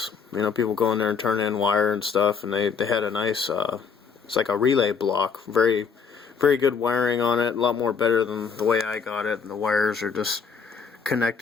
People go in there and turn in wire and stuff, and they had a nice, it's like a relay block. Very, very good wiring on it. A lot more better than the way I got it. And the wires are just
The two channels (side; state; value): right; quieter; 6.0 dB